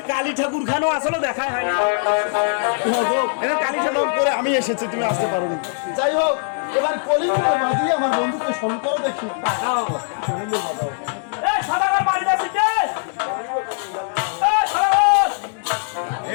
কালী ঠাকুর খানো আসলে দেখাই হয় না কালী ঠাকুর করে আমি এসেছি, তুমি আসতে পারোনি। যাই হোক, এবার কলিঙ্গ বাজিয়ে আমার বন্ধুকে স্মরণ করো দেখি। এই সাদাগার বাড়ি যাচ্ছে কে? এই সাদাগার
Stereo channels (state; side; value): silent; right; 65 dB below the other